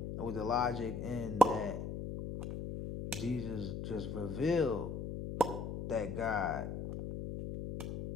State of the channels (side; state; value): left; noise; hum, 5 dB below the sound